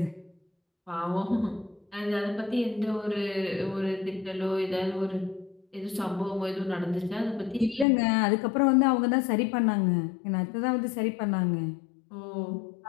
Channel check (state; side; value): drops out; right; at 7.9 s